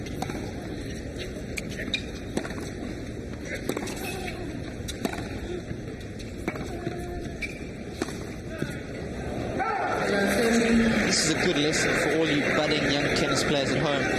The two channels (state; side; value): identical; both; correlation 1.00